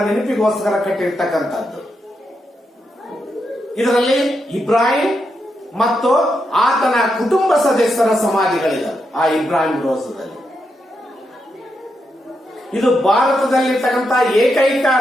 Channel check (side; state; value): both; normal; correlation 0.83